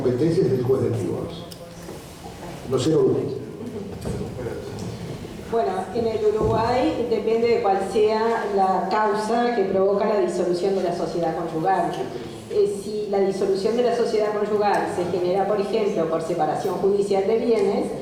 es el juez del divorcio. No sé, Bueno, en el Uruguay depende de cuál sea la causa que provoca la disolución de la sociedad conyugal. Si la disolución de la sociedad conyugal se genera, por ejemplo, por separación judicial de bienes,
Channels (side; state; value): both; identical; correlation 1.00